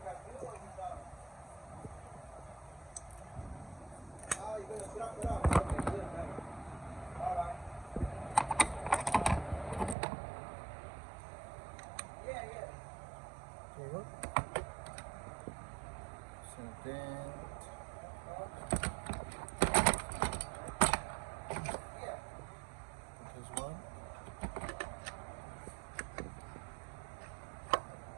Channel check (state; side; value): drops out; left; at 10.0 s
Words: There you go. So then this one.